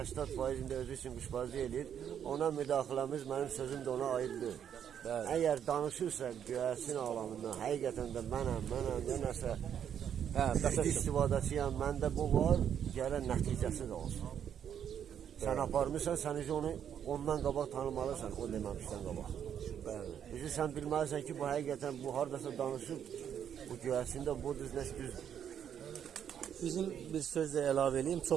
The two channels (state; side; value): quieter; left; 8.8 dB